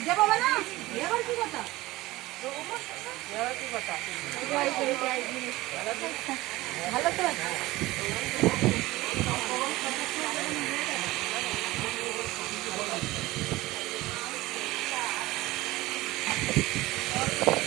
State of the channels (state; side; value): quieter; left; 18.8 dB